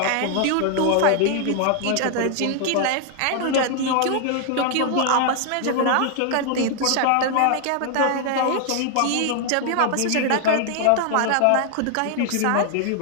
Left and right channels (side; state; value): both; different; correlation 0.00